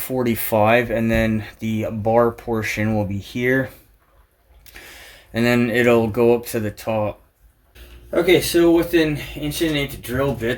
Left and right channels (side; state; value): both; identical; correlation 1.00